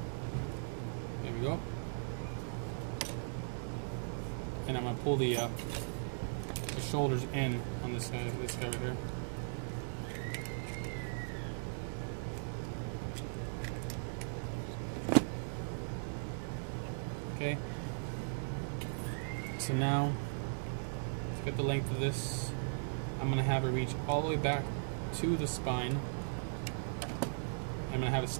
There we go. And I'm going to pull the shoulders in on this guy right here. Okay. So now, let's get the length of this. I'm going to have it reach all the way back to the spine. I'm going to have it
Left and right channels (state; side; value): silent; left; digital silence